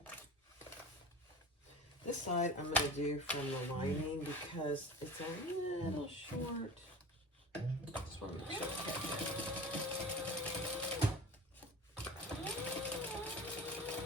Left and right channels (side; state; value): both; normal; correlation 0.36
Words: This side I'm going to do from the lining because it's a little short. Just want to make sure it's okay.